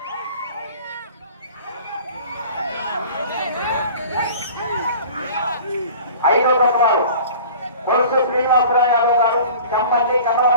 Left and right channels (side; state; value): both; inverted; correlation -0.44